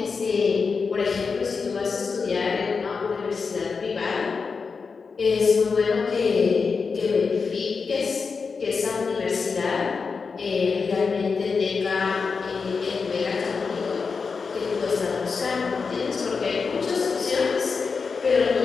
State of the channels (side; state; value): right; quieter; 5.0 dB